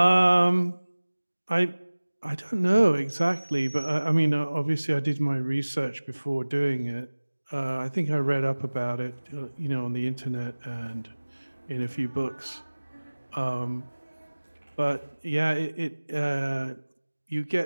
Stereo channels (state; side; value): inverted; both; correlation -1.00